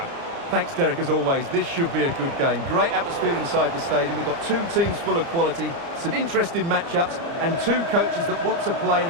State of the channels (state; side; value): late; left; 30 ms